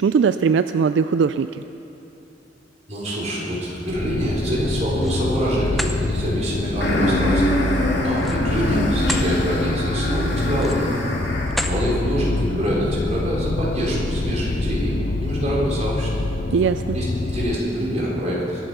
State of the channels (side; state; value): both; normal; correlation 0.61